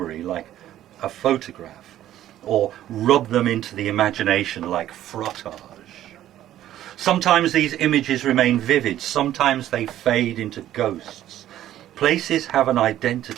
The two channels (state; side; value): quieter; left; 12.6 dB